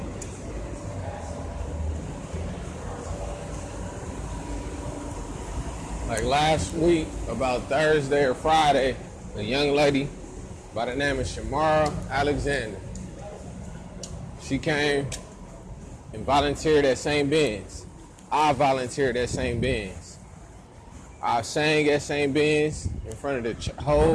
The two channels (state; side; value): identical; both; correlation 1.00